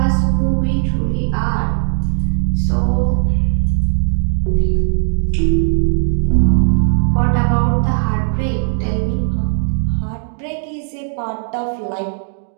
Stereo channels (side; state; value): left; silent; digital silence